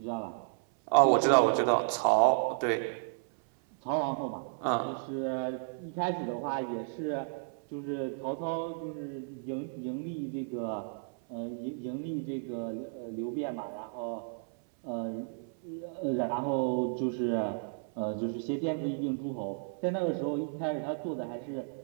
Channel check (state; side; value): silent; left; 56 dB below the other